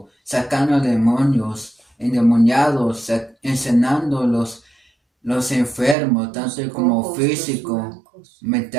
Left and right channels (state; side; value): drops out; left; at 6.0 s